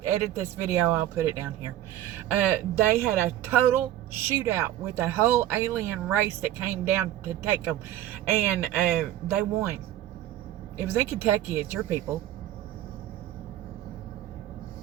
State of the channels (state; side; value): quieter; left; 13.1 dB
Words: edit this video, I'll put it down here. They had a total shootout with a whole alien race that came down to take them, and they won. It was in Kentucky. It's your people.